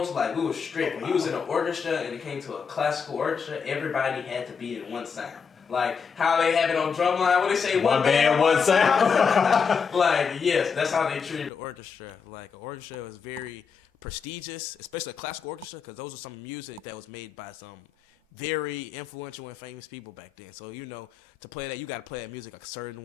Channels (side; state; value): right; quieter; 6.1 dB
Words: Like we were strict. When he was in an orchestra and it came to a classical orchestra, everybody had to be in one sound. Like how they have it on drumline, what they say, one band, one sound. Like yes, that's how they treated the orchestra. Like an orchestra was very prestigious, especially a classical orchestra, because those are some music that was made by some very influential and famous people back then. So to play that, you got to play that music a certain